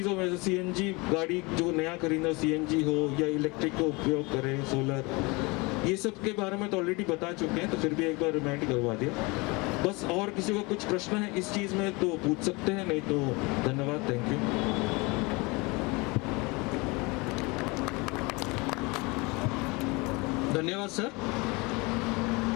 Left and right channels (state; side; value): quieter; right; 26.1 dB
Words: में सीएनजी गाड़ी जो नया खरीदना सीएनजी हो या इलेक्ट्रिक का उपयोग करें, सोलर, ये सब के बारे में तो ऑलरेडी बता चुके हैं, तो फिर भी एक बार रिमाइंड करवा दिया। बस और किसी को कुछ प्रश्न है इस चीज़ में तो पूछ सकते हैं, नहीं तो धन्यवाद, थैंक यू। धन्यवाद सर।